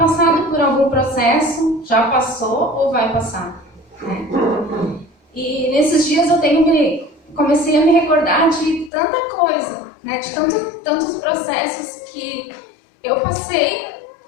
por algum processo, já passou ou vai passar, né? E nesses dias eu comecei a me recordar de tanta coisa, né? De tantos processos que eu passei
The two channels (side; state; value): right; drops out; at 8.9 s